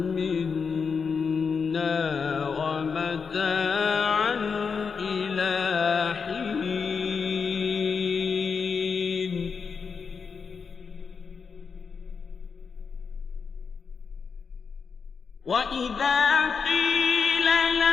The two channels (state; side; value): quieter; right; 5.7 dB